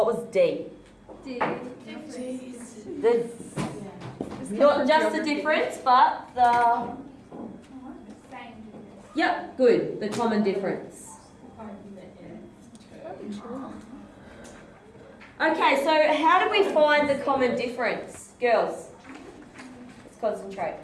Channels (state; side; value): identical; both; correlation 1.00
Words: was D? Not just the difference, but the... Yep, good. The common difference. Okay, so how do we find the common difference? Girls, let's concentrate.